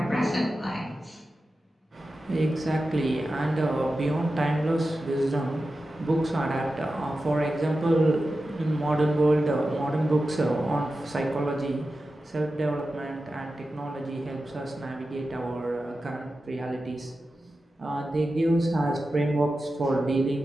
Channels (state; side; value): normal; both; correlation 0.92